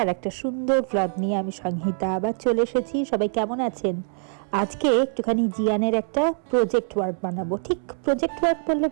আর একটা সুন্দর ভ্লগ নিয়ে আমি সংহিতা আবার চলে এসেছি। সবাই কেমন আছেন? আজকে একটুখানি জিয়ানের একটা প্রজেক্ট ওয়ার্ক বানাবো। ঠিক প্রজেক্ট ওয়ার্ক বললে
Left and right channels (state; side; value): silent; left; 62 dB below the other